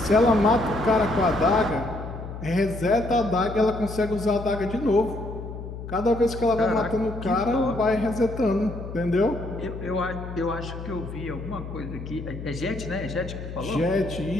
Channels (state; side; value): noise; left; hum, 10 dB below the sound